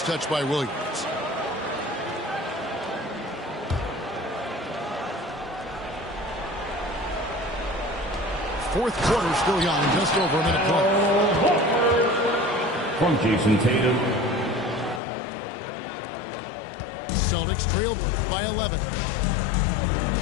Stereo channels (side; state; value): right; drops out; at 15.0 s